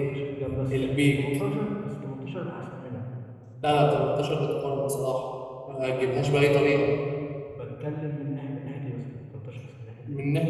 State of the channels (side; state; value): both; identical; correlation 1.00